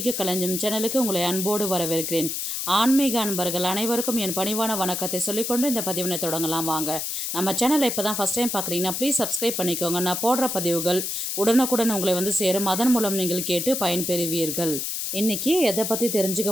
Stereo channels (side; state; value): left; noise; hiss, 3 dB below the sound